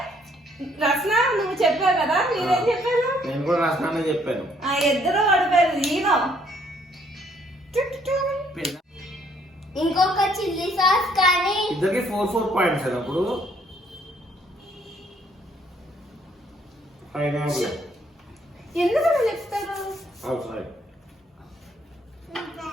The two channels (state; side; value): normal; both; correlation 0.66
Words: రసన నువ్వు చెప్పావు కదా, మీరేం చెప్పారు? నేను కూడా రసనానే చెప్పాను. ఇద్దరు పడిపోయారు. ఈనో ఇంకొక చిల్లీ సాస్ కానీ ఇద్దరికి 4 పాయింట్స్ అప్పుడు పైనాపిల్ ఎందుకు అలా చెప్తారు? అవుట్